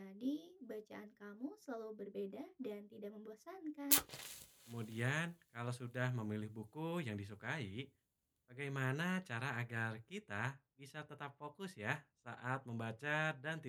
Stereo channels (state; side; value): identical; both; correlation 1.00